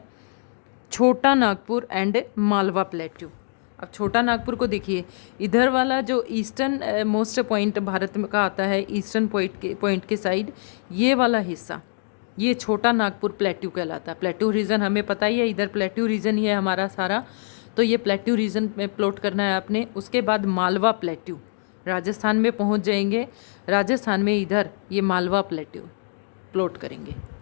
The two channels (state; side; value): silent; right; digital silence